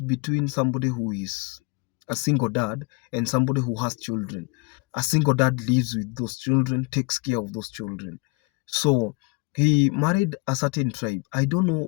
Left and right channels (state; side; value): quieter; right; 26.9 dB